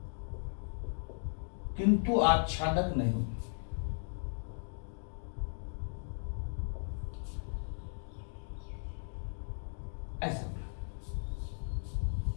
किंतु आच्छादक नहीं। ऐसा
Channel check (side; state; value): right; silent; digital silence